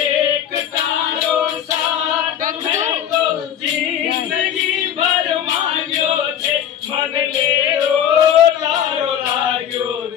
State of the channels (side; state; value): right; quieter; 9.8 dB